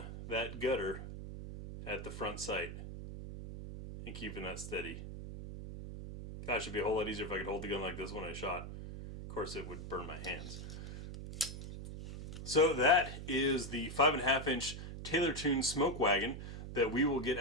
that gutter at the front sight and keeping that steady. Gosh, it'd be a whole lot easier if I could hold the gun like this when I shot. Of course it would burn my hands. So that is the 5.5-inch Taylor Tune Smoke Wagon that we will get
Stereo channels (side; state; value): right; noise; hum, 9 dB below the sound